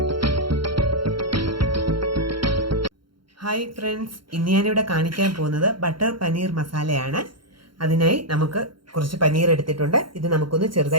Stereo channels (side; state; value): left; late; 0.73 ms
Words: friends, ഇന്ന് ഞാനിവിടെ കാണിക്കാൻ പോകുന്നത് ബട്ടർ പനീർ മസാലയാണ്. അതിനായി നമുക്ക് കുറച്ച് പനീർ എടുത്തിട്ടുണ്ട്. ഇത് നമുക്കൊന്ന്